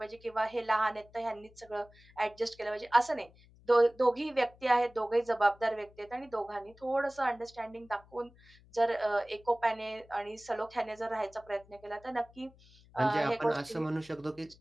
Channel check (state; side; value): noise; left; hum, 26 dB below the sound